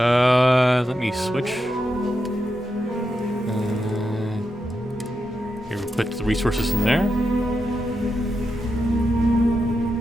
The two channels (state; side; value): normal; both; correlation 0.87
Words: me switch. Here, we put the resources in there.